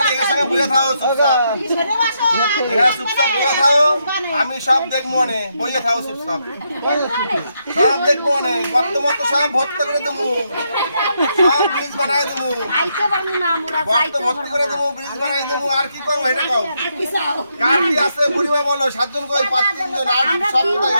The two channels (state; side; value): inverted; both; correlation -0.80